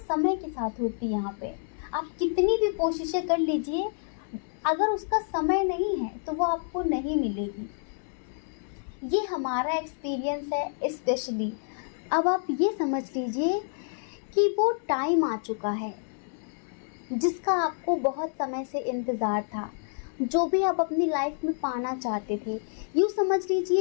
के साथ होती है यहाँ पे। आप कितनी भी कोशिशें कर लीजिए, अगर उसका समय नहीं है तो वो आपको नहीं मिलेगी। ये हमारा एक्सपीरियंस है स्पेशली। अब आप ये समझ लीजिए कि वो टाइम आ चुका है जिसका आपको बहुत समय से इंतज़ार था, जो भी आप अपनी लाइफ में पाना चाहते थे। यूँ समझ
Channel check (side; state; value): right; silent; 59 dB below the other